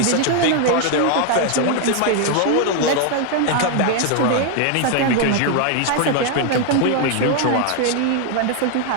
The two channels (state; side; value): different; both; correlation 0.00